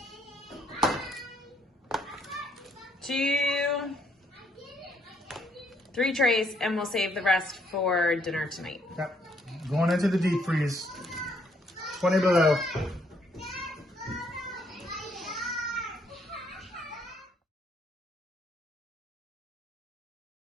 2, 3 trays, and we'll save the rest for dinner tonight. Yep. Going into the deep freeze. 20 below.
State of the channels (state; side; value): normal; both; correlation 0.69